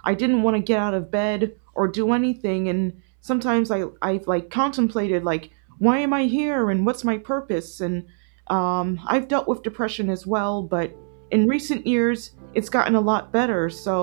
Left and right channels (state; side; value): silent; left; digital silence